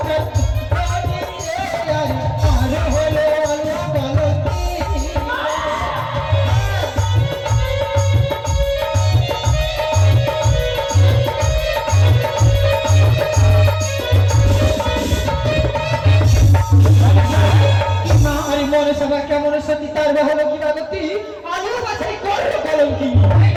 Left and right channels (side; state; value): both; identical; correlation 1.00